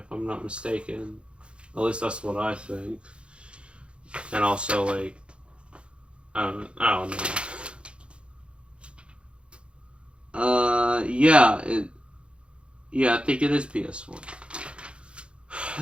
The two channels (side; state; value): left; late; 0.057 ms